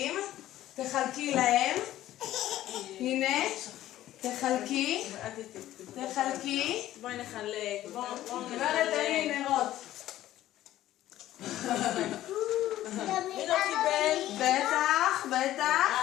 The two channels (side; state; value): right; quieter; 13.9 dB